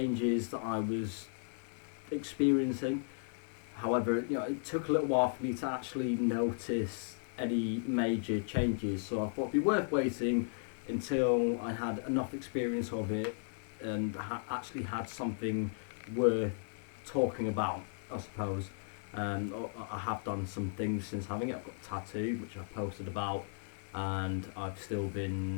that I was experiencing. However, it took a little while for me to actually notice any major changes, so I thought it'd be worth waiting until I had enough experience of it and actually had something worth talking about, I suppose. I have done some things since having it. I've got a tattoo, which I posted about, and I've still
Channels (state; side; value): silent; right; digital silence